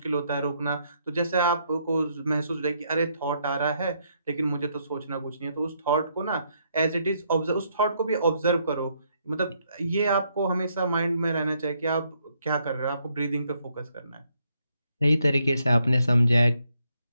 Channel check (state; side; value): inverted; both; correlation -0.73